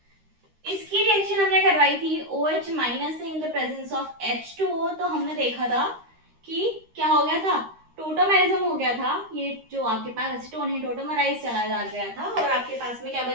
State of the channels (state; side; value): late; left; 13 ms